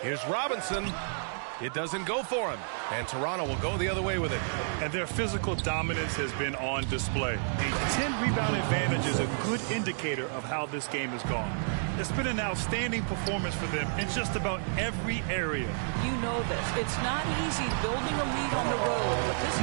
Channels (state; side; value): silent; left; digital silence